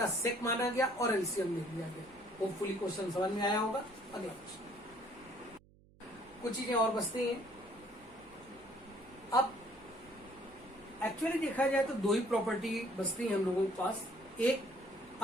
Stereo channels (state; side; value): noise; right; hum, 27 dB below the sound